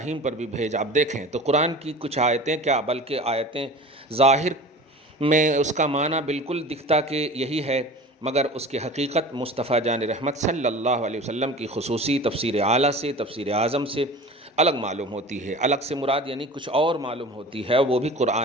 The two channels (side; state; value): both; normal; correlation 0.38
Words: پر بھی بھیج۔ آپ دیکھیں تو قرآن کی کچھ آیتیں کیا بلکہ آیتیں ظاہر میں اس کا معنی بالکل دکھتا کہ یہی ہے، مگر اس کی حقیقت مصطفیٰ جان رحمت صلی اللہ علیہ وسلم کی خصوصی تفسیر اعلیٰ سے، تفسیر اعظم سے الگ معلوم ہوتی ہے۔ الگ سے مراد یعنی کچھ اور معلوم ہوتی ہے، وہ بھی